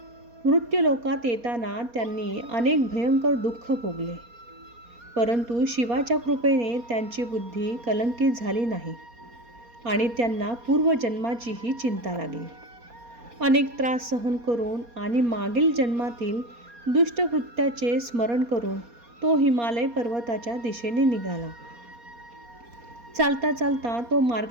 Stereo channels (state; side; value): late; left; 4.2 ms